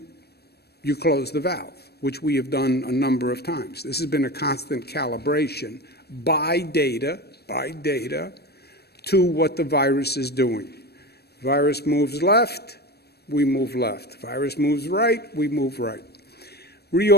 you close the valve, which we have done a number of times. This has been a constant calibration by data, to what the virus is doing. Virus moves left, we move left. Virus moves right, we move right.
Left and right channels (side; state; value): right; late; 0.47 ms